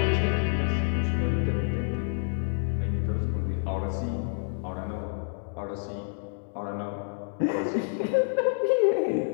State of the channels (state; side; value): silent; right; digital silence